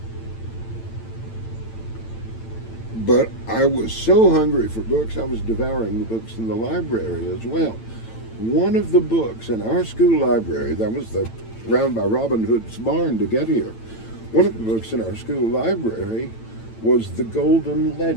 But I was so hungry for books, I was devouring the books in the library as well. One of the books in our school library, that was round by Robin Hood's barn to get here, one of the books in our school library was The Golden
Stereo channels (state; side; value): late; right; 9.0 ms